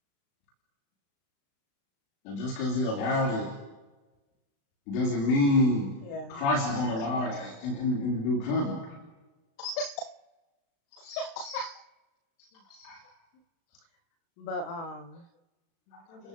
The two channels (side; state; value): right; late; 36 ms